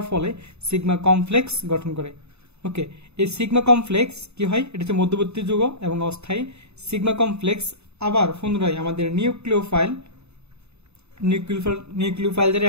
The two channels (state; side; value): late; left; 0.80 ms